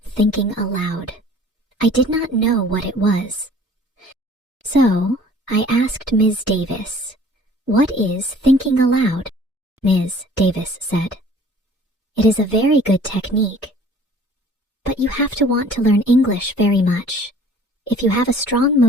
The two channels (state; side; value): normal; both; correlation 0.51